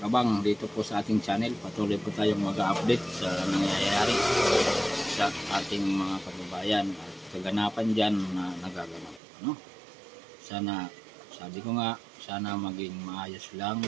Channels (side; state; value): left; drops out; at 9.2 s